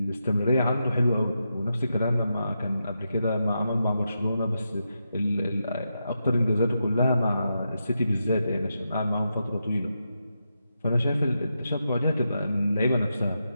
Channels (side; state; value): both; inverted; correlation -0.86